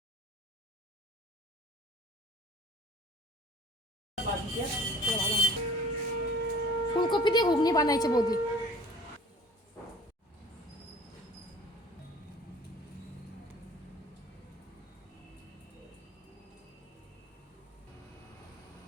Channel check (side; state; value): both; normal; correlation 0.47